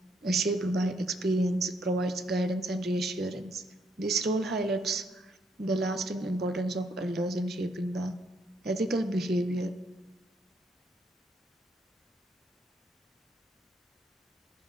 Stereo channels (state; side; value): normal; both; correlation 0.72